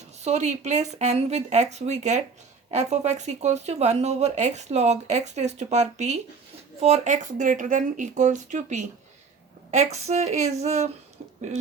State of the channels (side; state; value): left; quieter; 5.1 dB